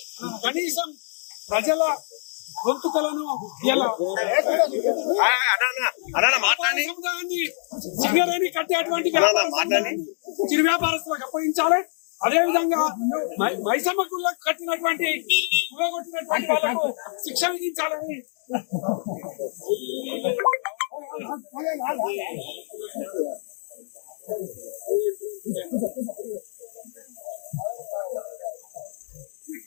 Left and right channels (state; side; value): silent; right; digital silence